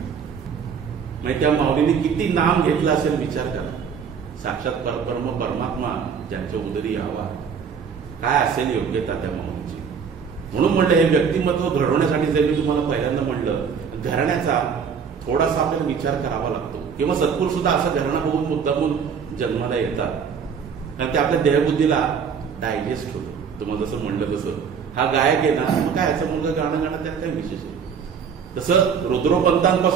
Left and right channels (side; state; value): left; quieter; 6.7 dB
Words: म्हणजे त्या माऊलीने किती नाम घेतलं असेल विचार करा. साक्षात परब्रह्म परमात्मा ज्यांच्या उदरी यावा, काय असेल योग्यता त्या माऊलीची. म्हणून म्हणलं हे व्यक्तिमत्व घडवण्यासाठी जर मी तुम्हाला पहिल्यांदा म्हणलं, घराण्याचा थोडासा आपल्याला विचार करावा लागतो. किंवा सत्पुरुष सुद्धा असं घराणा बघून मुद्दामून जन्माला येतात, कारण ते आपल्या देहबुद्धीला डायजेस्ट होतं. तुम्हाला जसं म्हणलं तसं हा गायक आहे ना, मग काय याचा मुलगा गाणं गाणं त्यात काही विशेष आहे. तसं